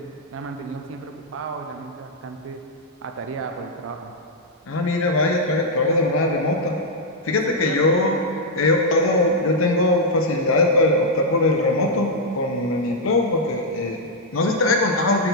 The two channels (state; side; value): normal; both; correlation -0.03